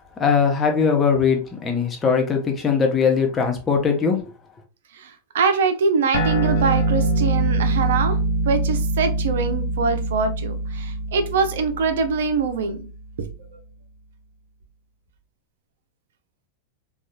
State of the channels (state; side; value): normal; both; correlation -0.16